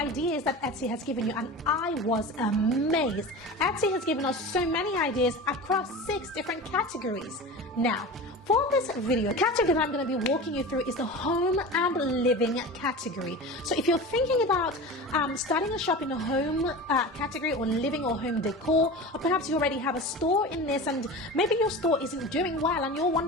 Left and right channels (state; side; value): normal; both; correlation 0.31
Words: that Etsy has given you, and I was amazed. Etsy has given us so many ideas across 6 different categories. Now, for this video, the category that I'm going to be walking you through is the home and living category. So if you're thinking about starting a shop in the home category, or living or home decor, or perhaps you already have a store in this and maybe your store isn't doing well and you're